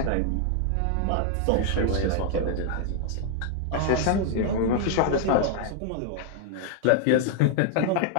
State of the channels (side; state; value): both; different; correlation 0.00